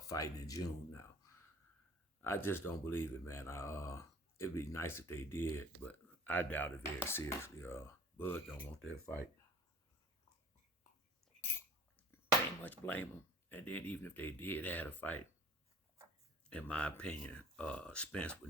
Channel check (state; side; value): normal; both; correlation 0.48